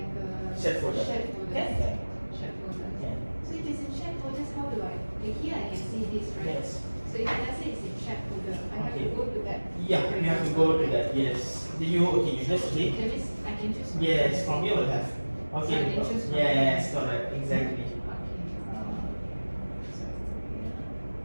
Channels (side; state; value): both; inverted; correlation -1.00